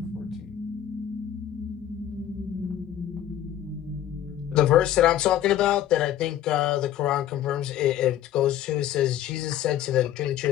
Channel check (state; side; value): quieter; right; 11.4 dB